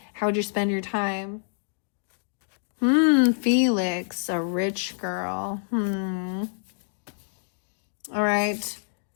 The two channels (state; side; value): silent; right; digital silence